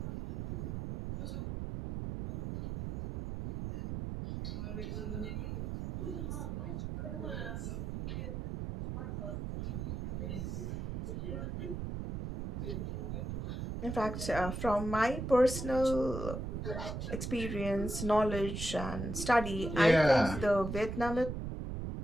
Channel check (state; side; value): noise; right; rumble, 4 dB below the sound